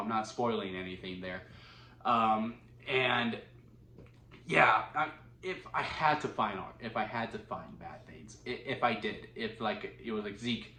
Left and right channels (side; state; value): both; identical; correlation 1.00